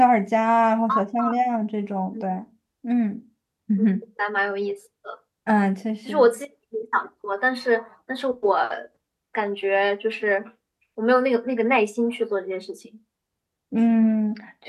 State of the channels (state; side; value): identical; both; correlation 1.00